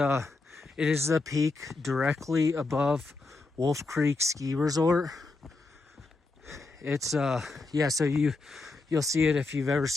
peak directly above Wolf Creek Ski Resort. It's yeah, so you'll see it if you've ever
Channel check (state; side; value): quieter; right; 3.5 dB